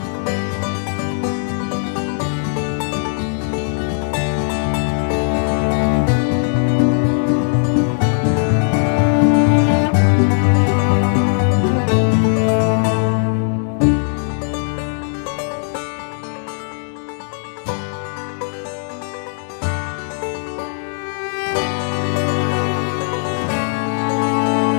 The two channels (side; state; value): right; silent; digital silence